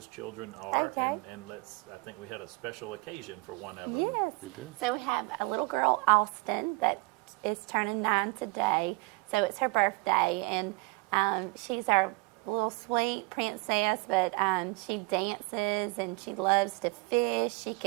children are, and I think we had a special occasion for one of them. Yes, we did. So we have a little girl, Austin, that is turning 9 today. So it's her birthday, and she's our little sweet princess, but she dances and she loves to fish. She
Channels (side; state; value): left; quieter; 27.0 dB